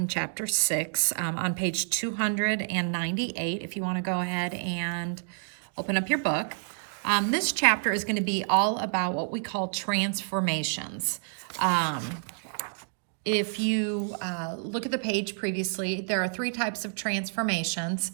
chapter 6 on page 298 if you want to go ahead and open up your book. This chapter is going to be all about what we call transformations. If you look at the page previously, there are 3 types of transformations.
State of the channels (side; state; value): left; silent; digital silence